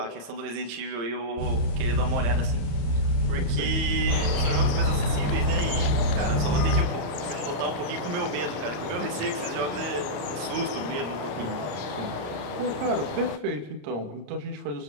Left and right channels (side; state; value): left; late; 33 ms